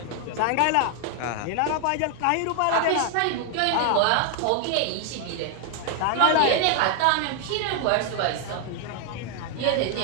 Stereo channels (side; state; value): both; different; correlation 0.00